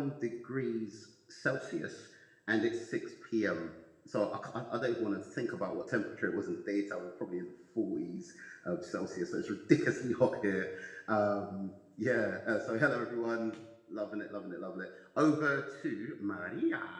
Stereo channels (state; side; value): identical; both; correlation 1.00